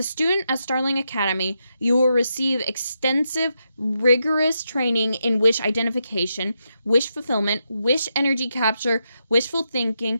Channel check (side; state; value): both; inverted; correlation -0.84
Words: student at Starling Academy, you will receive extensive, rigorous training in wish identification, wish fulfillment, wish energy capture, wishful thinking,